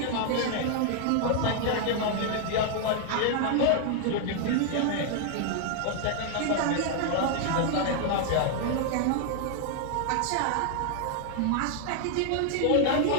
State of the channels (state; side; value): different; both; correlation 0.00